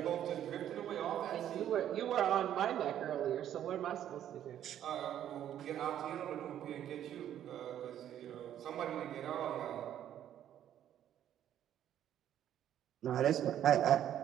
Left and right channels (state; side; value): quieter; left; 10.8 dB